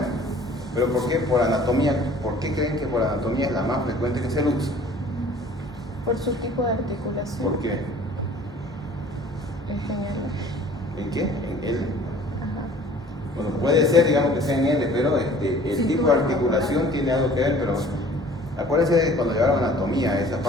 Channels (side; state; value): both; normal; correlation 0.50